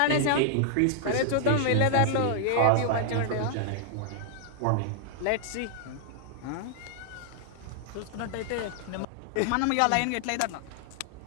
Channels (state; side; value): different; both; correlation 0.00